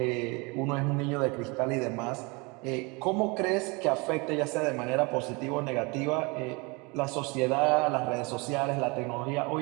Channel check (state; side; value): quieter; left; 28.0 dB